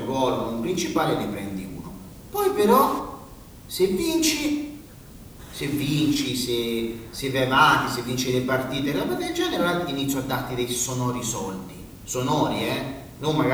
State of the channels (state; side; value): identical; both; correlation 1.00